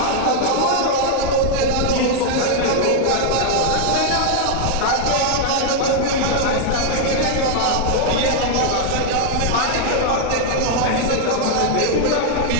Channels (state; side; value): different; both; correlation 0.00